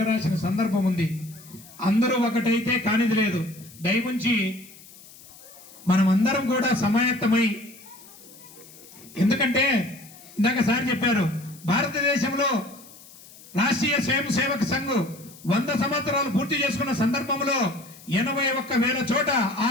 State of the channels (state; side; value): noise; left; hiss, 21 dB below the sound